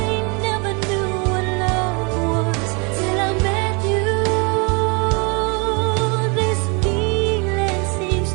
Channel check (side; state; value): left; quieter; 31.8 dB